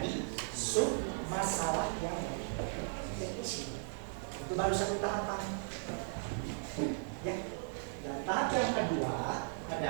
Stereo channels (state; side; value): silent; left; digital silence